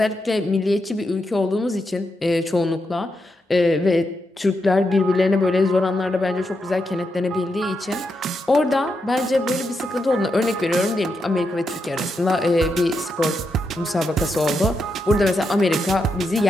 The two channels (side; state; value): both; normal; correlation 0.84